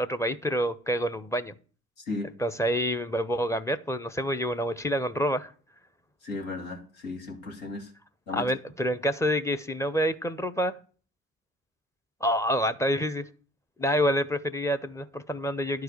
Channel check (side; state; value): both; normal; correlation 0.55